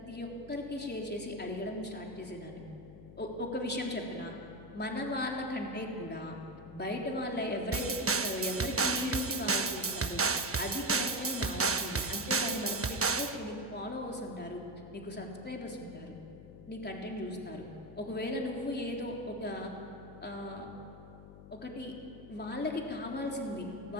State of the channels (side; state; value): left; noise; hum, 15 dB below the sound